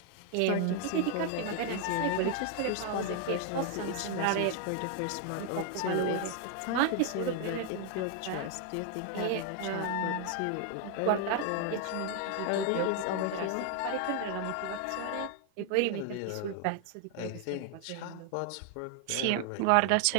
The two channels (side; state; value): both; different; correlation 0.00